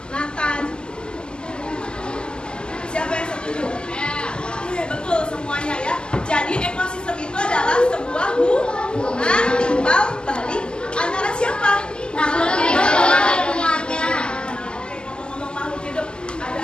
Nathan? Siapa yang setuju? Oke, betul semuanya ya. Jadi ekosistem itu adalah sebuah hubungan timbal balik antara siapa? Makhluk hidup dengan lingkungannya. Oke, ngomong-ngomong makhluk hidup, ada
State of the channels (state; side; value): late; right; 0.048 ms